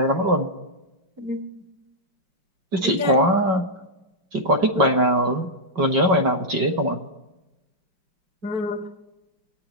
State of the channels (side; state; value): left; late; 5.3 ms